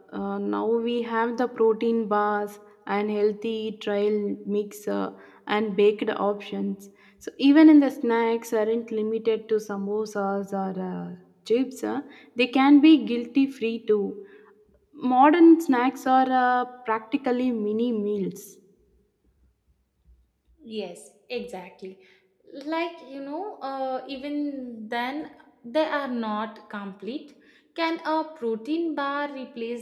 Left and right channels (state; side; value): identical; both; correlation 1.00